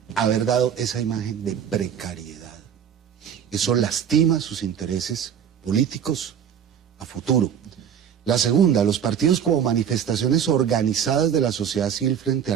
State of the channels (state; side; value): quieter; left; 8.5 dB